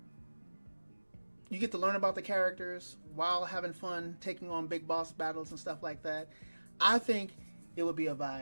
you get to learn about the characters while having fun taking on big boss battles and stuff like that. I think it would be a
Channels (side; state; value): both; inverted; correlation -1.00